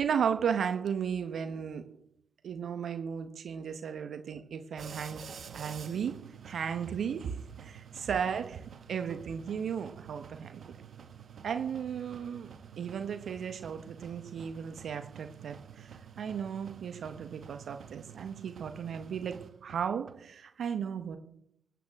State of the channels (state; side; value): quieter; left; 7.1 dB